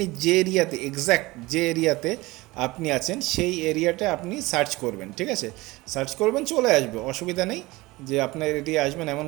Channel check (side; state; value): left; quieter; 20.9 dB